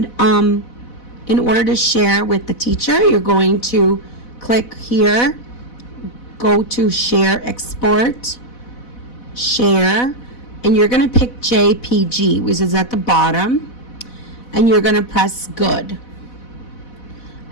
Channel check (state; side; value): late; right; 4.1 ms